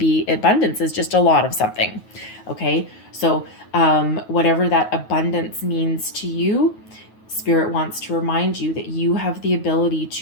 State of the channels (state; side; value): late; right; 9.3 ms